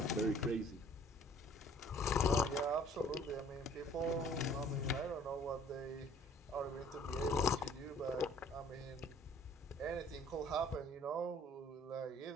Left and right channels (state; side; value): normal; both; correlation 0.54